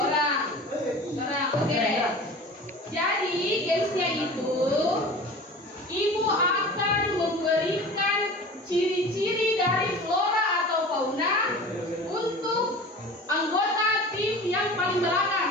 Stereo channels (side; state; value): both; normal; correlation 0.38